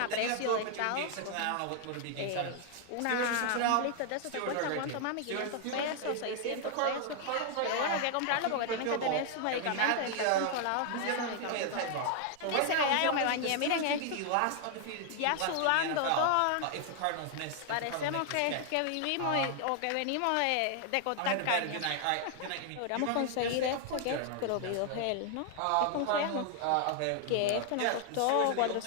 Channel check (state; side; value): different; both; correlation 0.00